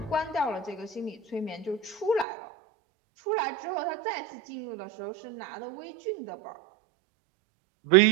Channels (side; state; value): left; drops out; at 2.2 s